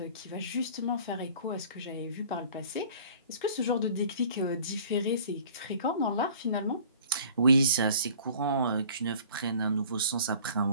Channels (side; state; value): both; inverted; correlation -0.49